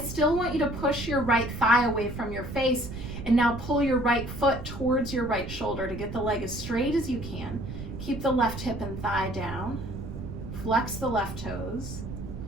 want you to push your right thigh away from your face, and now pull your right foot towards your right shoulder to get the leg as straight as you can. Keep the left hip and thigh down. Flex the left toes.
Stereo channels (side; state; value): right; noise; rumble, 9 dB below the sound